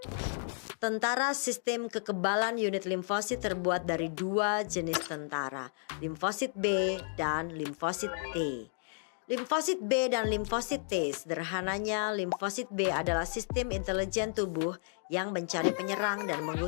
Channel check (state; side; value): silent; right; 56 dB below the other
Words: Tentara sistem kekebalan unit limfosit terbuat dari dua jenis tentara, limfosit B dan limfosit T. Limfosit B dan limfosit T, sederhananya limfosit B adalah sistem intelijen tubuh yang mencari penyerang dan